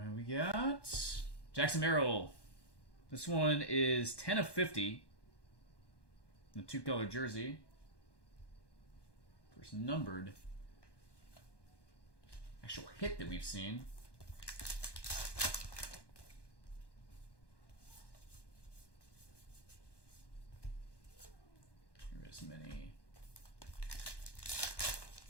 we got Jackson Merrill. This one is 10 of 50. The 2-color jersey. First numbered actual hit that we've seen. Here is many.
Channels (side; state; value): right; late; 1.1 ms